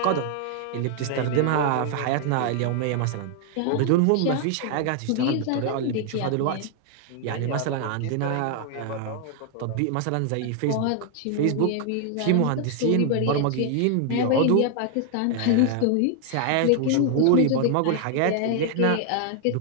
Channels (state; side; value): different; both; correlation 0.00